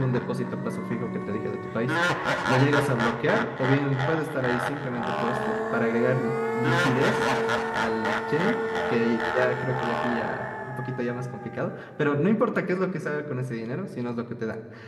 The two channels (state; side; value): identical; both; correlation 1.00